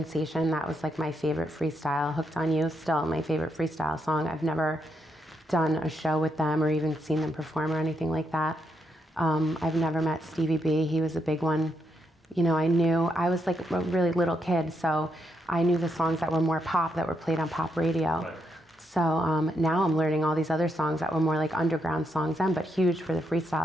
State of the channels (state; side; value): normal; both; correlation 0.79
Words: that was like my favorite freestyle. Hooked on You, still my favorite freestyle song. I've never done a show with them or even seen them perform or anything like that. I've never met Stevie B. He was a big one. You know, I was like a really little kid, so I knew the songs that were more pop, that were played on pop radio. Right. So now I'm learning all these other songs that were more like underground songs then, but huge for the